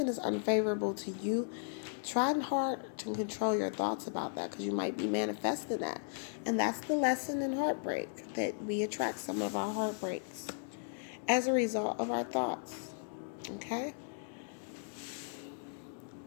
is unfavorable to you, try hard to control your thoughts about that, because you might be manifesting that. And that's the lesson in heartbreak, that we attract some of our heartbreaks as a result of our thoughts. Okay?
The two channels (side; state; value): right; silent; digital silence